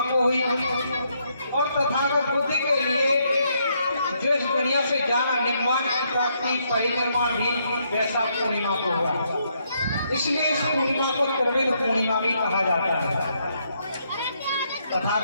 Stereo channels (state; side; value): inverted; both; correlation -0.74